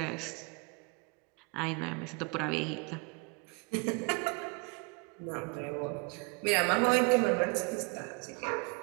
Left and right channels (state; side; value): quieter; left; 31.7 dB